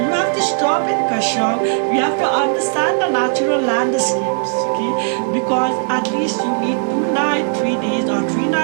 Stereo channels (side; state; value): left; silent; digital silence